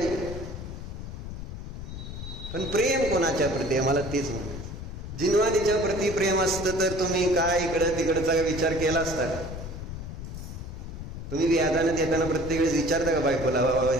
पण प्रेम कोणाच्या प्रती आहे? मला तेच म्हणायचं. जिनवानीच्या प्रती प्रेम असतं तर तुम्ही काय इकडं तिकडचा विचार केला असता का? तुम्ही व्याजाने देताना प्रत्येक वेळेस विचारता का बायकोला, बाबा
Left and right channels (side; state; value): left; noise; rumble, 9 dB below the sound